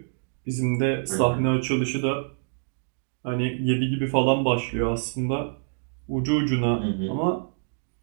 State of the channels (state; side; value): silent; left; digital silence